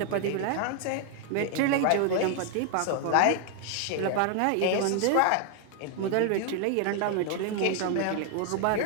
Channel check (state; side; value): different; both; correlation 0.00